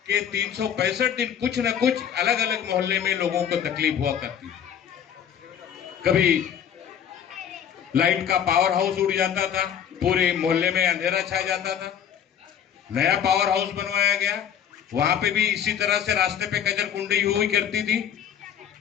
के 365 दिन कुछ न कुछ अलग अलग मोहल्ले में लोगों को तकलीफ हुआ करती थी। कभी लाइट का पावर हाउस उड़ जाता था, पूरे मोहल्ले में अंधेरा छा जाता था। नया पावर हाउस बनवाया गया, वहां पे भी इसी तरह से रास्ते पे कचरकुंडी हुई करती थी।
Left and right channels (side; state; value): right; quieter; 8.9 dB